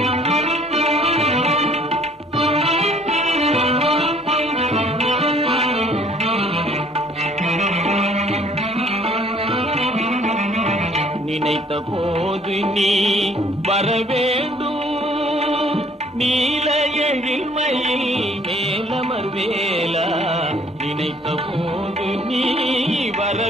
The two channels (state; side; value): normal; both; correlation 0.58